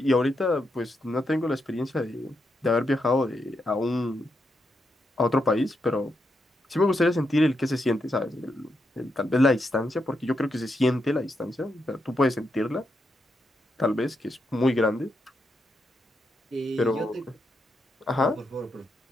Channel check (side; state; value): both; normal; correlation 0.83